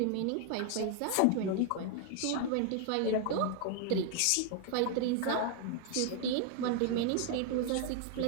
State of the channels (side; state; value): both; different; correlation 0.00